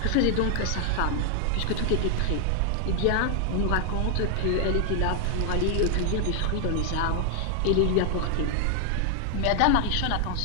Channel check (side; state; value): both; different; correlation 0.00